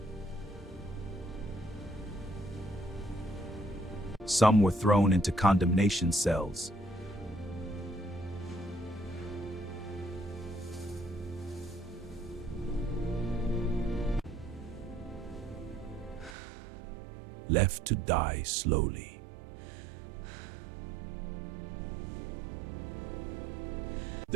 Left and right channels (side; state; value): left; drops out; at 16.4 s